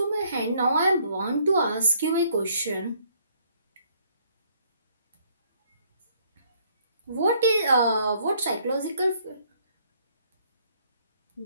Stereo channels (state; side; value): inverted; both; correlation -0.65